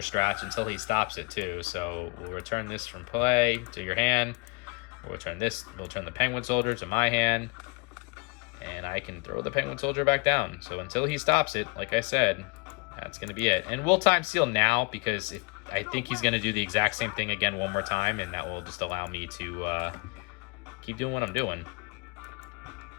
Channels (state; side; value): quieter; right; 29.6 dB